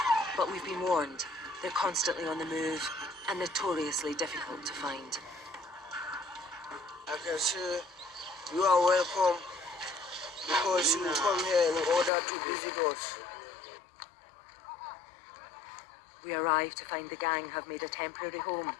But we've been warned, they're constantly on the move and notoriously difficult to find. I can say you are welcome because you come here in order to visit us. We arrive to find the gang have made a temporary home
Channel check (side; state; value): right; drops out; at 12.1 s